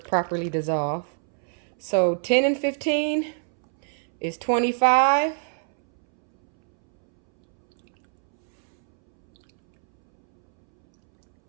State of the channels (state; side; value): silent; left; 63 dB below the other